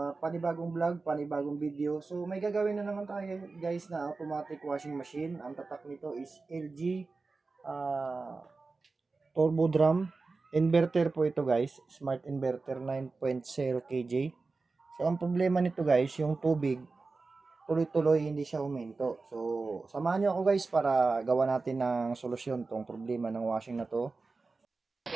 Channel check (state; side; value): quieter; left; 3.9 dB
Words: panibagong vlog, panibagong video. So may gagawin na naman tayo guys na automatic washing machine. Ang tatak nito is LG Turbo Drum. Inverter po ito guys, smart inverter 9.0 kJ. So ang problema nito guys, yung tubig, tuloy-tuloy hindi siya huminto. So samahan niyo ako guys para gawa natin ng solusyon tong problema ng washing na to.